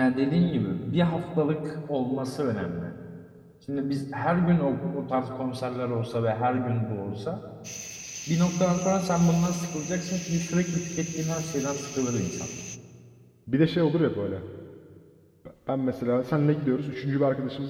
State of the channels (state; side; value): identical; both; correlation 1.00